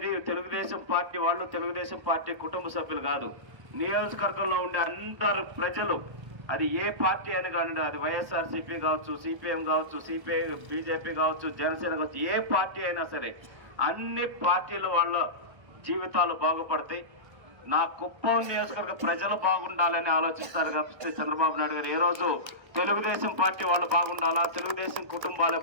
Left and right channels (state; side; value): late; left; 1.3 ms